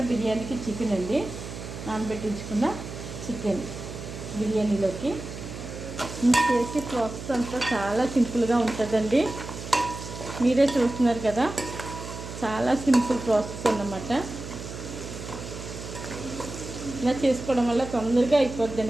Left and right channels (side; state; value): right; noise; hum, 10 dB below the sound